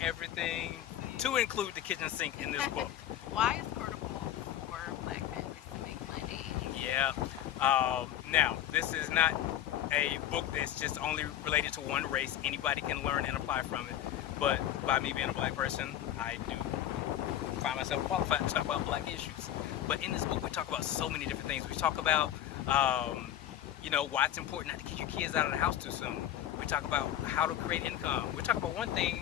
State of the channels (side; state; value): right; quieter; 11.6 dB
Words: to include the kitchen sink in this book. Why is portable for Black families to make money? Yeah. Now, this is not a book that's just only related to one race. Anybody can learn and apply from it. But by me being a black person, I do find myself qualified to talk about black issues. But in this book, we talk about so many different things. We talk about, you know, why it's important not to kick your kids out of the house too soon. We talk about how to create income. We talk about one